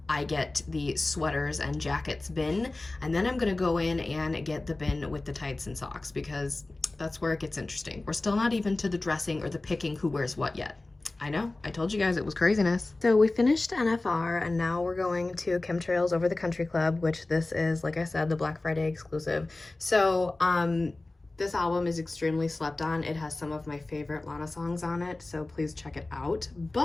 I get the sweaters and jackets bin, and then I'm gonna go in and get the bin with the tights and socks, because that's where it gets interesting. We're still not even to the dressing or the picking who wears what yet. I know, I told you guys it was craziness. So we finished NFR and now we're going to Chemtrails Over the Country Club, which this is, like I said, the Black Friday exclusive. So this album is extremely slept on. It has some of my favorite Lana songs on it, so please check it out.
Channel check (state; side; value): quieter; right; 3.0 dB